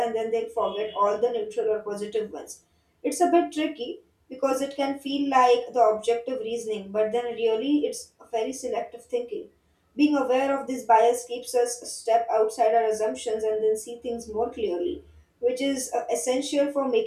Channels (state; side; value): identical; both; correlation 1.00